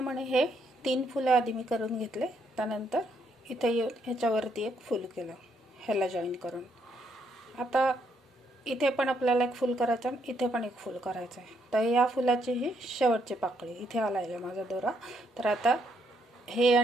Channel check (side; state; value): both; normal; correlation 0.73